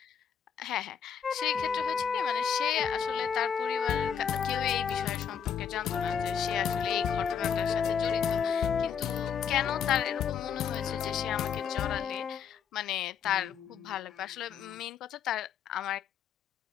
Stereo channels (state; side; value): quieter; right; 7.6 dB